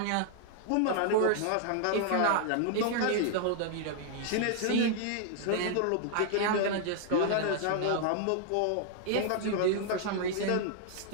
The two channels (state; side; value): different; both; correlation -0.01